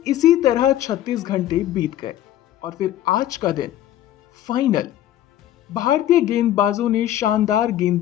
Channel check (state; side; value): quieter; right; 12.5 dB